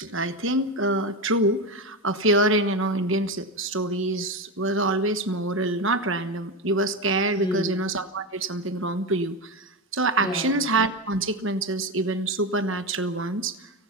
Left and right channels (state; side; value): normal; both; correlation 0.16